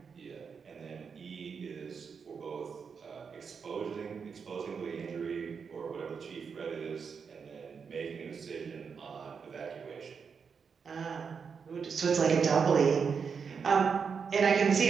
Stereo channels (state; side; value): quieter; left; 6.0 dB